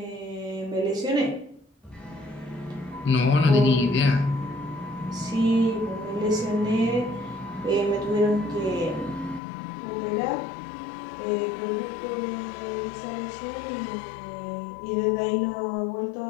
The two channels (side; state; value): right; drops out; at 9.4 s